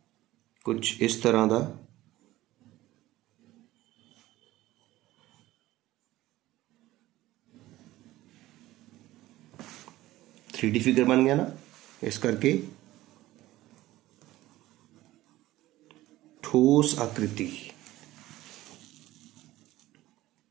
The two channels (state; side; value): quieter; left; 16.5 dB